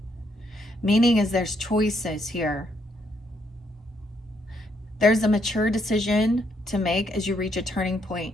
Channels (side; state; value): both; normal; correlation 0.74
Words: Meaning is there's choices here. There's a mature decision to make as you reach a turning point.